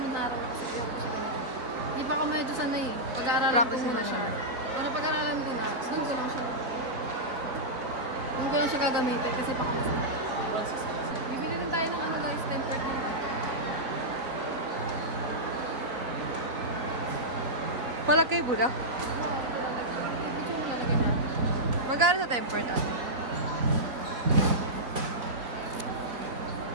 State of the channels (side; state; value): left; late; 4.0 ms